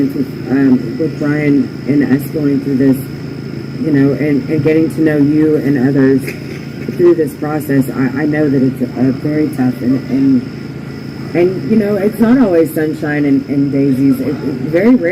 with Brian and us going through this, and getting to know you and others through this process, I know that it's very tough, and it's not always sunshine and daisies. Very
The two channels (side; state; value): both; identical; correlation 1.00